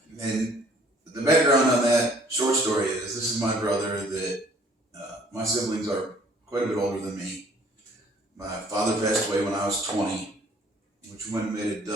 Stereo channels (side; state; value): both; normal; correlation 0.57